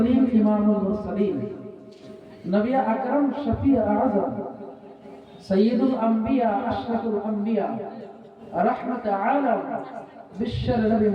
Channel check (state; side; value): identical; both; correlation 1.00